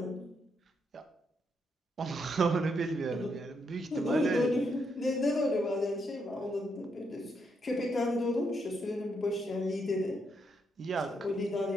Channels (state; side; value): normal; both; correlation 0.78